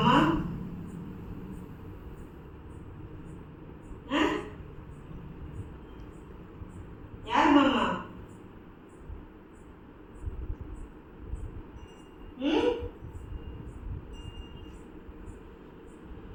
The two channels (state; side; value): identical; both; correlation 1.00